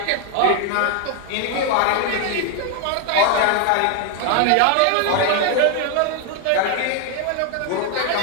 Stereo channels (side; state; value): both; different; correlation 0.01